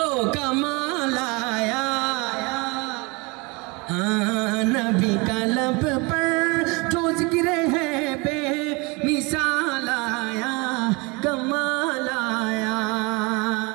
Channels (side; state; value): left; quieter; 27.7 dB